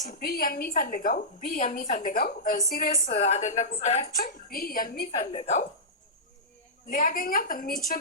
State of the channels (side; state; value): both; normal; correlation -0.16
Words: ቢ የሚፈልገው ሲሪየስ አይደለ ጉዳያችን። ቢ የሚፈልገው ሊያገኛት የሚችል